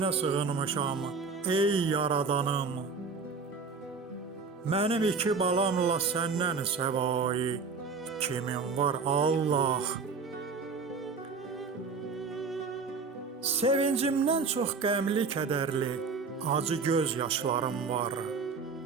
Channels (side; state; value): left; quieter; 4.8 dB